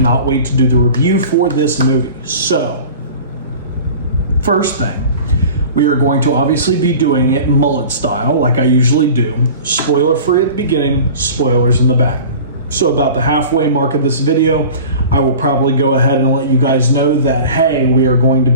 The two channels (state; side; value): inverted; both; correlation -0.40